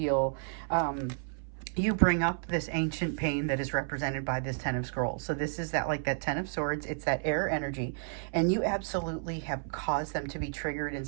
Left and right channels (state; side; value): silent; left; 57 dB below the other